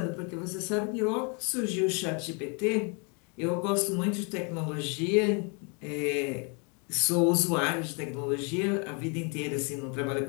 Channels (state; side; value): quieter; right; 35.2 dB